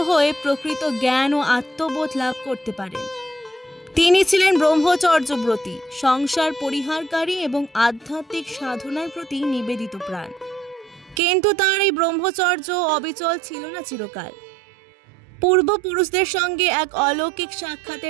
হয়ে প্রকৃত জ্ঞান ও আত্মবোধ লাভ করতে পারেন। তিনি ছিলেন ব্রহ্মচর্যব্রতী, সংসার পরিহারকারী এবং আধ্যাত্মিক সাধনার প্রতি নিবেদিত প্রাণ। কিন্তু তার এই ব্রহ্মচর্য অবিচল ছিল না চিরকাল। পূর্বপুরুষদের সঙ্গে এক অলৌকিক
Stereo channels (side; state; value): left; drops out; at 11.2 s